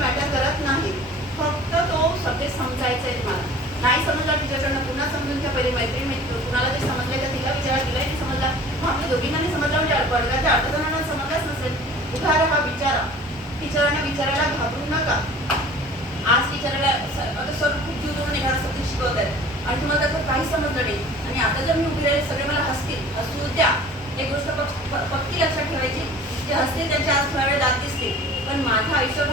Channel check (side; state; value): both; normal; correlation 0.46